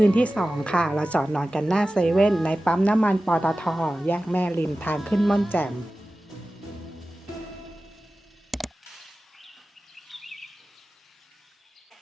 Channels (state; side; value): normal; both; correlation 0.95